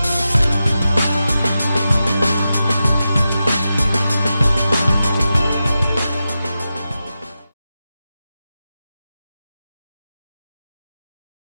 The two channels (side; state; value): both; inverted; correlation -0.91